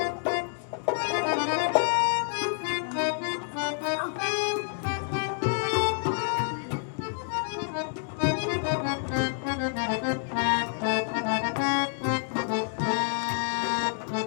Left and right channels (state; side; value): silent; right; digital silence